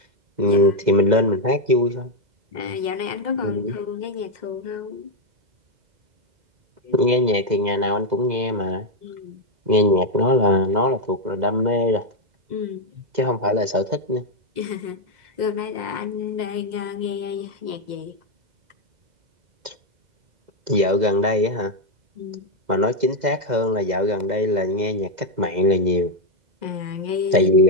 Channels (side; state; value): left; late; 2.0 ms